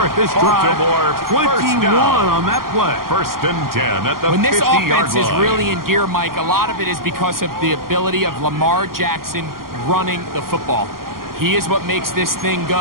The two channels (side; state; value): left; late; 0.92 ms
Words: this drive. Baltimore first 21 down. on that play. 1st and 10 at the When this 50-yard offense line. is really in gear, Mike, a lot of it is because of the ability of Lamar Jackson running the football. He is what makes this thing